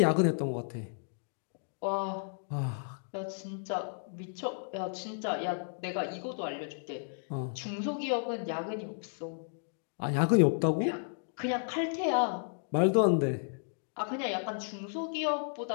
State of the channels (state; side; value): silent; right; digital silence